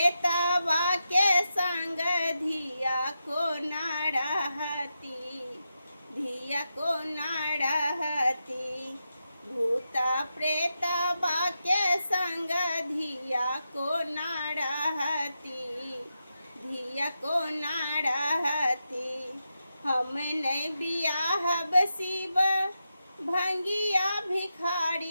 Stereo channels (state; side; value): inverted; both; correlation -0.87